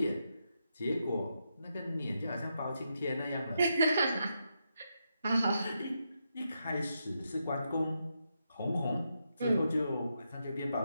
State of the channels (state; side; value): inverted; both; correlation -0.83